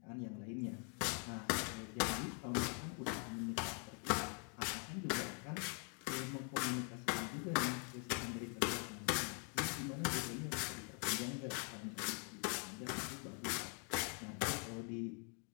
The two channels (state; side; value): quieter; right; 39.3 dB